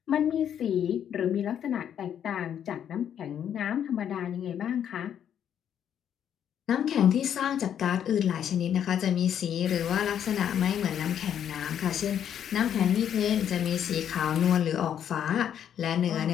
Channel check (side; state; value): right; quieter; 9.3 dB